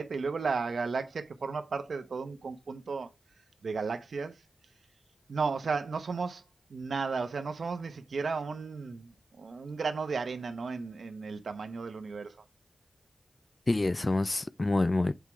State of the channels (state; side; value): normal; both; correlation 0.92